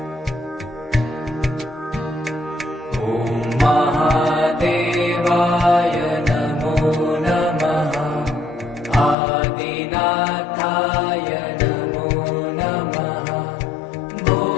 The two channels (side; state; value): right; drops out; at 9.2 s